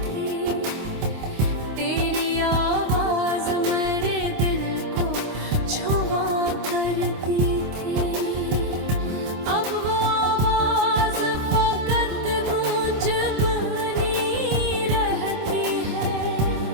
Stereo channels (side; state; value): left; late; 26 ms